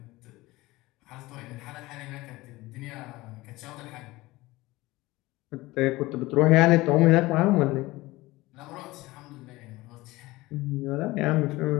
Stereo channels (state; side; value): quieter; right; 19.8 dB